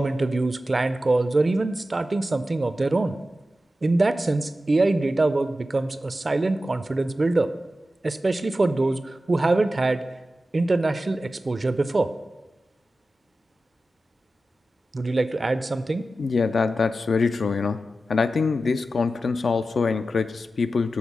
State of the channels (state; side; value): normal; both; correlation 0.93